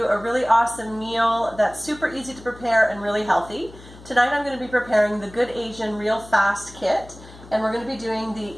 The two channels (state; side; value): noise; left; hum, 19 dB below the sound